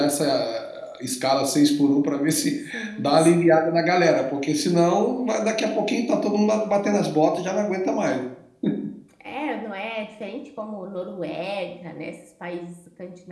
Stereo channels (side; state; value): both; identical; correlation 1.00